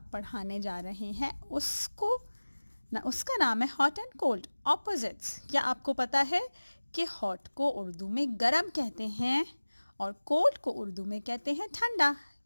पढ़ाने जा रहे हैं उसका नाम है हॉट एंड कोल्ड ऑपोजिट्स। क्या आपको पता है कि हॉट को उर्दू में गरम कहते हैं और कोल्ड को उर्दू में कहते हैं ठंडा।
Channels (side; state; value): both; inverted; correlation -1.00